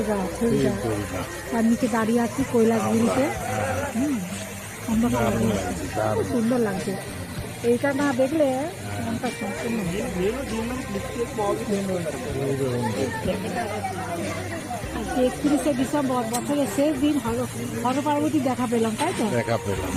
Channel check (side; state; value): both; identical; correlation 1.00